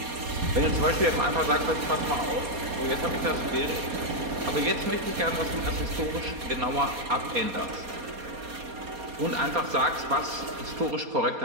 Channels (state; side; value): late; left; 4.2 ms